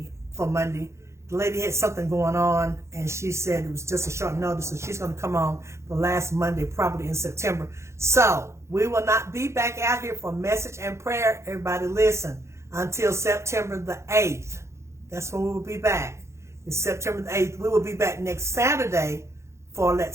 for Monday. The lady had something going on, and she said it was just a short notice, so she's going to come on the last Monday, probably in September. So we will not be back out here for message and prayer. Everybody listen, until September the 8th. That's when we will be back. It's September the 8th. We will be back next Saturday for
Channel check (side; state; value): left; late; 0.14 ms